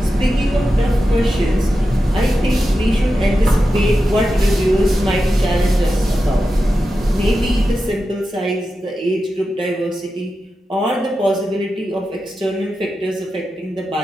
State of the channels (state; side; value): normal; both; correlation 0.91